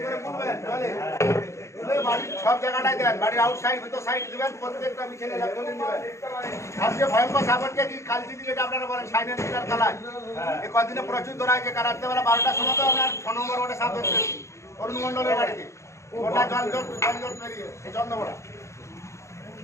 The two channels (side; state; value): right; late; 0.14 ms